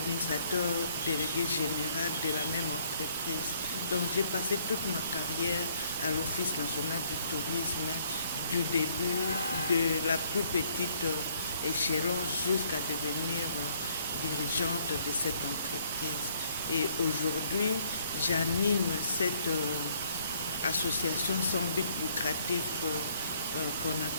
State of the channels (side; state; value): both; inverted; correlation -0.64